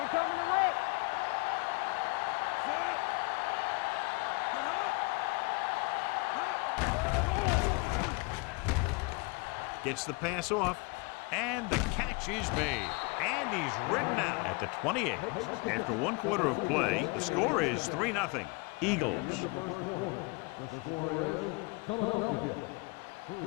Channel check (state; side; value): quieter; right; 28.5 dB